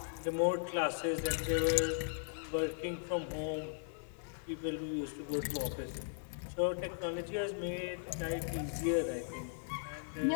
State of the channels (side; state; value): right; silent; 53 dB below the other